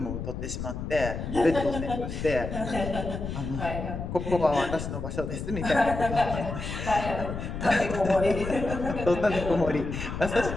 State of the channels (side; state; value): left; noise; rumble, 6 dB below the sound